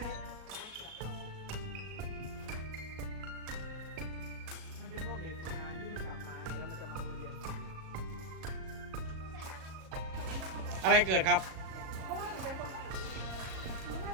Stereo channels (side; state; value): left; late; 37 ms